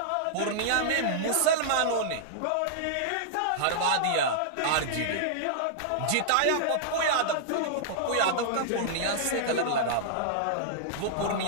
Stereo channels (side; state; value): both; different; correlation -0.01